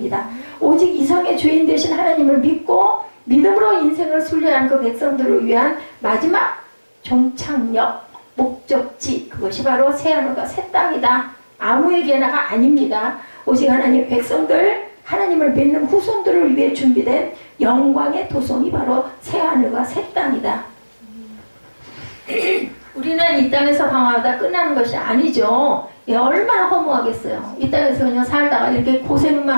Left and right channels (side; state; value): both; inverted; correlation -1.00